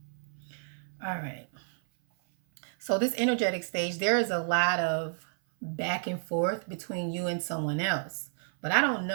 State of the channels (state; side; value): silent; left; 57 dB below the other